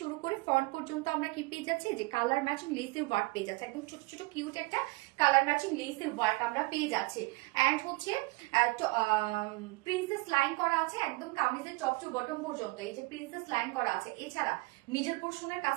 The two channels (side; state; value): left; quieter; 24.9 dB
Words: শুরু করে ফ্রন্ট পর্যন্ত আমরা কি পেয়ে যাচ্ছি যে কালার ম্যাচিং লেসের ওয়ার্ক পেয়ে যাচ্ছে, একদম ছোট ছোট কিউট একটা কালার ম্যাচিং লেসের ওয়ার্ক আমরা পেয়ে যাচ্ছি। এন্ড হচ্ছে প্রিন্সেস লাইন করা আছে একদম কামিজের টপ টু বটম পর্যন্ত, এই যে প্রিন্সেস লাইন করা আছে। এছাড়া মিডল পোর্শনের